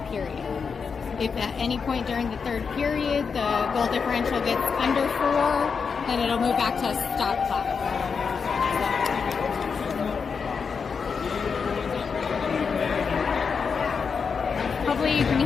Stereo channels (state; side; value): quieter; right; 5.7 dB